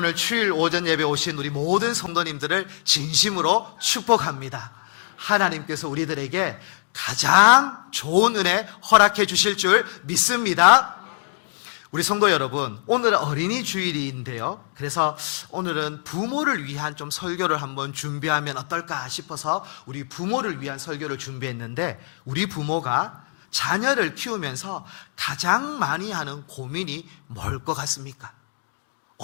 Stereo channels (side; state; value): right; silent; 63 dB below the other